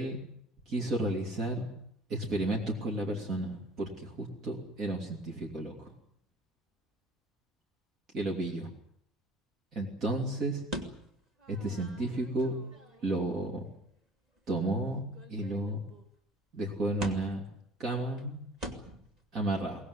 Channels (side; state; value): both; normal; correlation 0.49